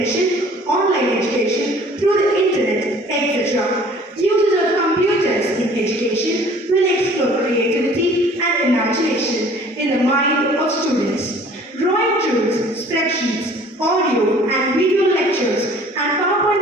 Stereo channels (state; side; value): normal; both; correlation 0.51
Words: online education through the internet, etc. Users of computers in education will explore creativity and imagination in the mind of students. Drawing tools, spreadsheets, audio and video lectures, and PowerPoint